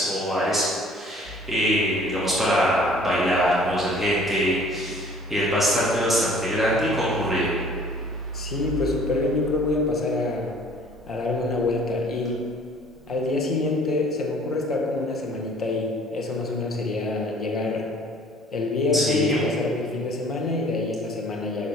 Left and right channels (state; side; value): normal; both; correlation 0.53